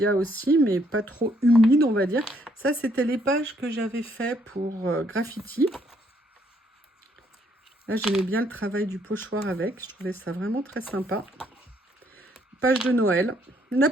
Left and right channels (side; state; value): both; normal; correlation 0.69